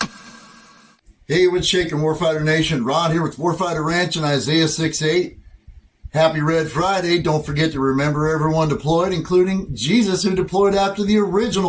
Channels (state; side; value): identical; both; correlation 1.00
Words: Hey, what's shaking, Warfighter Nation? Ron here with Warfighter Ranch and Isaiah 6:8. Happy Red Friday. Don't forget to remember everyone deployed, including Jesus, who deployed after the